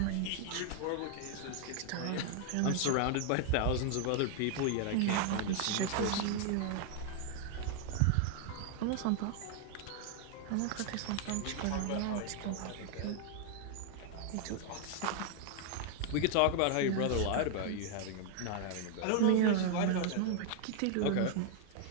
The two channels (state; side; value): different; both; correlation 0.00